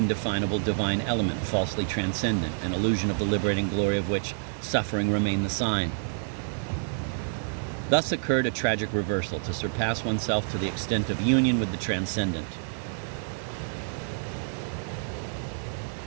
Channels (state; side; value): silent; left; 59 dB below the other